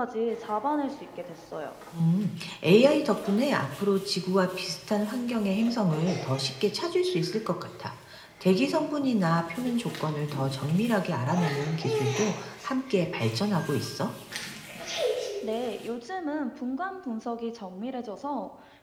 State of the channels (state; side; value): identical; both; correlation 1.00